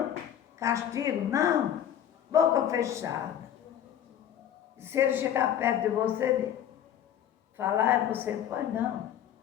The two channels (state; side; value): quieter; right; 10.1 dB